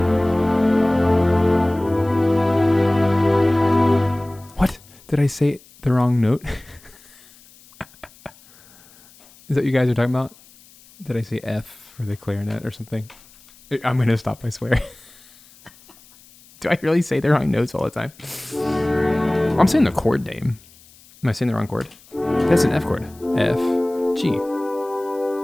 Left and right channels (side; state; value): left; noise; hiss, 26 dB below the sound